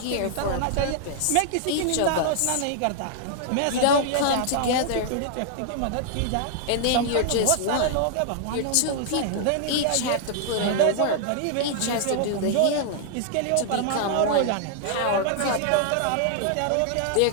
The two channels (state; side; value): different; both; correlation -0.01